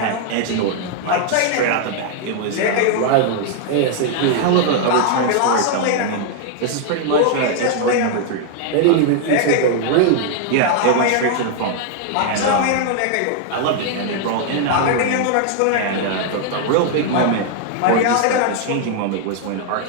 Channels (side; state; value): both; different; correlation 0.00